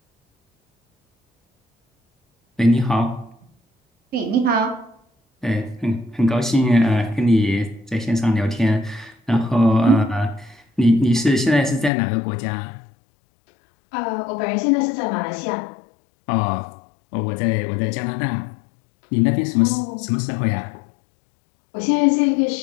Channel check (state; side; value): drops out; right; at 11.9 s